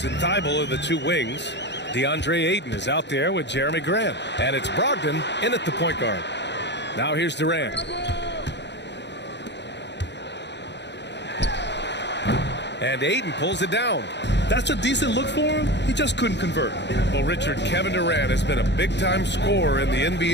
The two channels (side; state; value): right; late; 0.51 ms